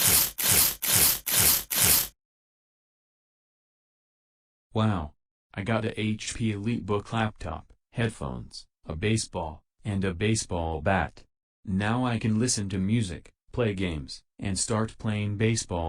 Wow. I got a HP EliteBook laptop, headphones, a baseball, and a baseball bat. Now I can listen to music, play games, and start playing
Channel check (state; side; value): identical; both; correlation 1.00